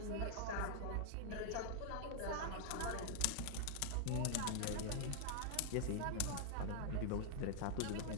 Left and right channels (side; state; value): both; different; correlation 0.00